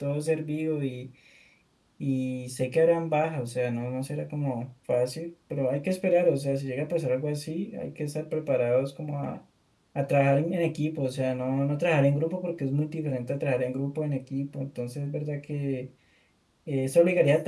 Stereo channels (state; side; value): identical; both; correlation 1.00